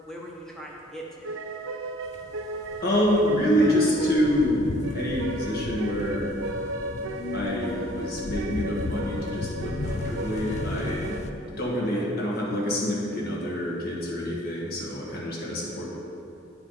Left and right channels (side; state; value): both; normal; correlation 0.56